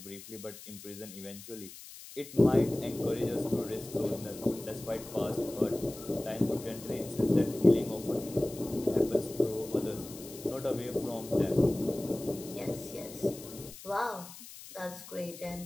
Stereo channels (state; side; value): noise; left; hiss, 15 dB below the sound